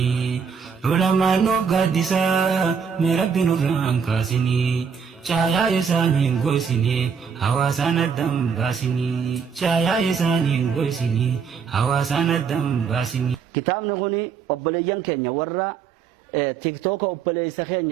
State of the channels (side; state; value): left; quieter; 6.4 dB